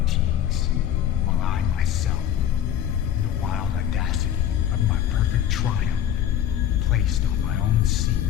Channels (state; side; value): quieter; right; 10.3 dB